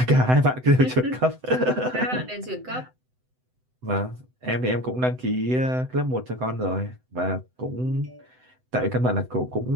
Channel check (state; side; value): late; left; 7.9 ms